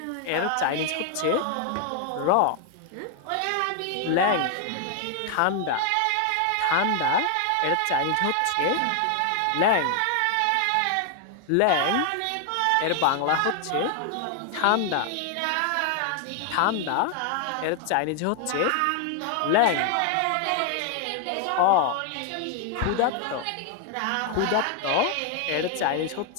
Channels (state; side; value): different; both; correlation 0.00